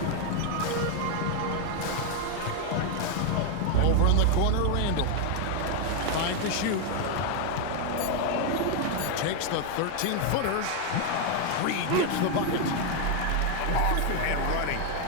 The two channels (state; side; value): different; both; correlation 0.01